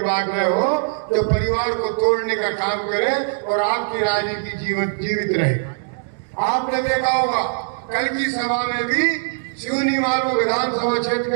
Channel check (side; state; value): left; silent; digital silence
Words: बांट रहे हो जो परिवार को तोड़ने का काम करे और आपकी राजनीति जीवित रहे। आपने देखा होगा कल की सभा में भी सिवनी मालवा विधानसभा क्षेत्र